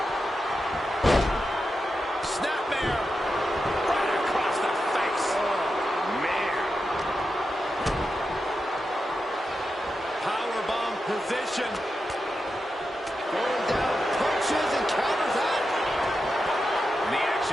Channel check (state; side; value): normal; both; correlation 0.89